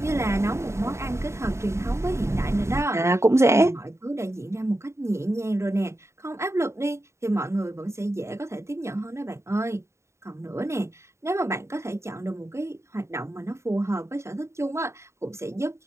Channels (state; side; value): late; left; 0.13 ms